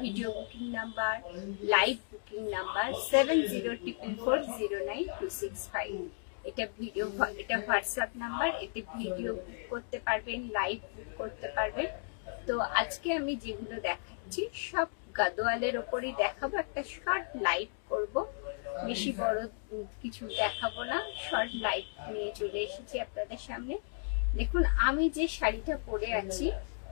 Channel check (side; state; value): right; silent; digital silence